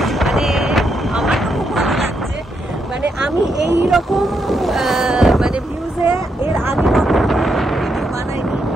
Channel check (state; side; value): normal; both; correlation 0.80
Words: মানে আমার তো খুব ভালো লাগছে। মানে আমি এইরকম মানে ভিউজে এর আগে ভিডিও বানাইনি,